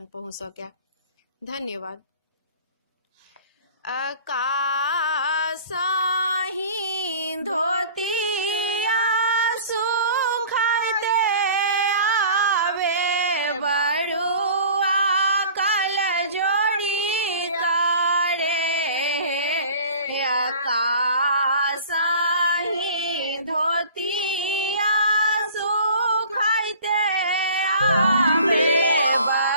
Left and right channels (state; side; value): inverted; both; correlation -0.45